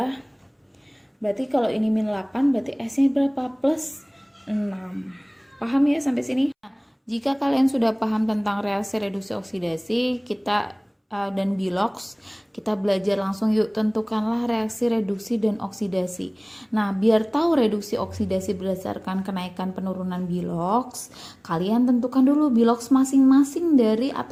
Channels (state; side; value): identical; both; correlation 1.00